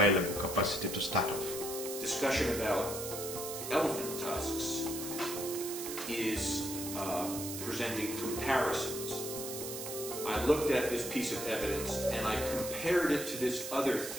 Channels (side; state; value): right; noise; hiss, 7 dB below the sound